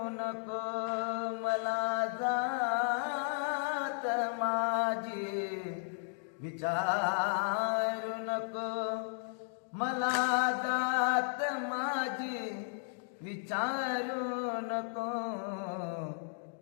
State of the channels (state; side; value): silent; right; digital silence